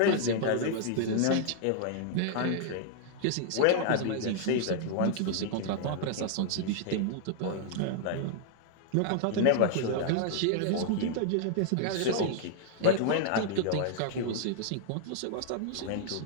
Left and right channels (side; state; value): both; different; correlation -0.01